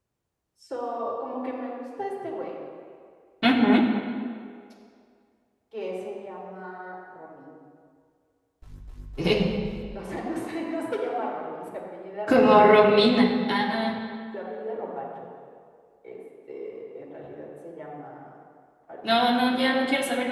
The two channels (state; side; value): identical; both; correlation 1.00